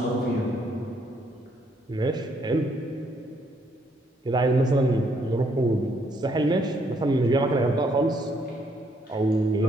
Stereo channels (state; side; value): normal; both; correlation 0.71